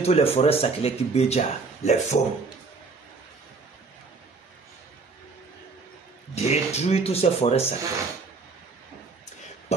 toutes les forêts sacrées qui béja, les faunes. Détruire toutes ces forêts sacrées.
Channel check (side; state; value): left; quieter; 4.2 dB